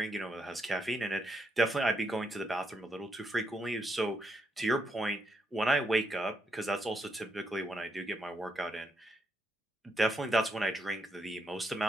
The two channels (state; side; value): normal; both; correlation 0.79